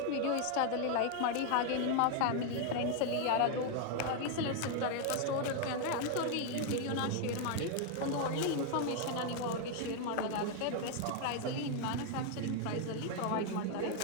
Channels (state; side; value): different; both; correlation 0.01